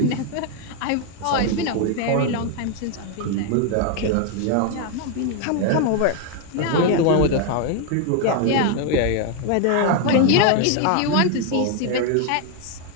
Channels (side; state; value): both; different; correlation 0.01